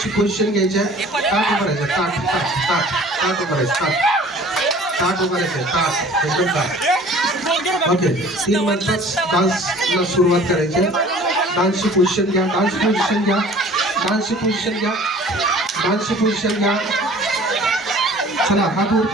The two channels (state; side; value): normal; both; correlation 0.48